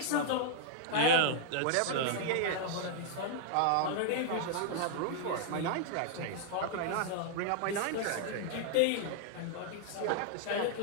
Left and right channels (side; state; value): both; different; correlation -0.01